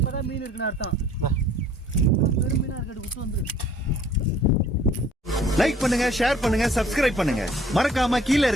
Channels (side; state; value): both; normal; correlation 0.55